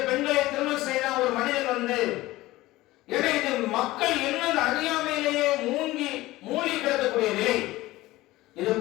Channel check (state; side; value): quieter; right; 17.9 dB